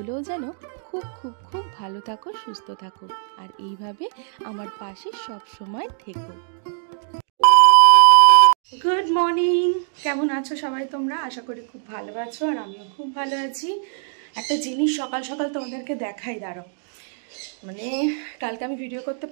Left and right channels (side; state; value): left; silent; digital silence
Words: যেন খুব খুব খুব ভালো থাকো, সুস্থ থাকো, আর এইভাবে আমার পাশে সব সময় থেকো। গুড মর্নিং, কেমন আছো সবাই তোমরা? আশা করি খুব ভালো আছো, আর আমিও খুব ভালো আছি। একটা জিনিস সকাল সকাল তোমাদেরকে দেখাই, দাঁড়াও। মানে কালকে আমি ভিডিও করতে